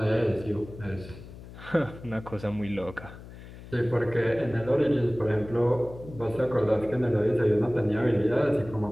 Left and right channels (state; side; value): noise; left; hum, 16 dB below the sound